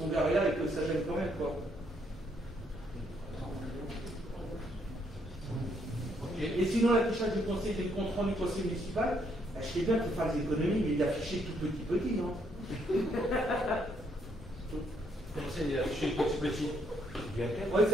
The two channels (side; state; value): both; normal; correlation 0.72